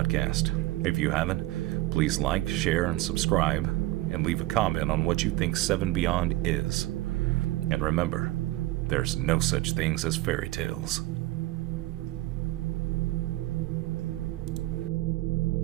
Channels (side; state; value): left; quieter; 17.9 dB